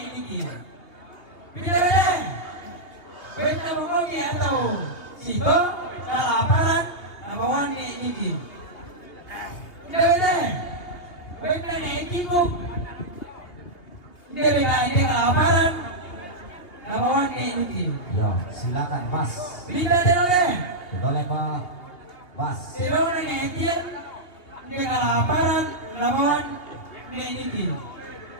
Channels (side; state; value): right; late; 2.8 ms